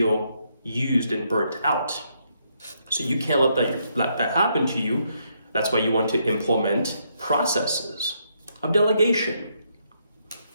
used and burnt out. So you can't let that happen to you. That's why you want to implement processes of delegation.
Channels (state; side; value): inverted; both; correlation -0.76